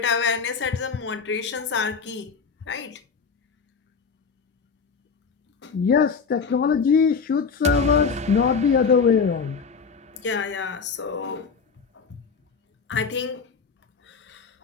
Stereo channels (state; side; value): quieter; right; 5.5 dB